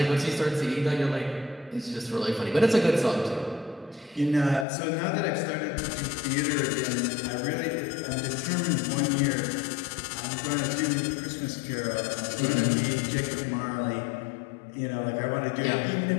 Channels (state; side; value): drops out; right; at 4.7 s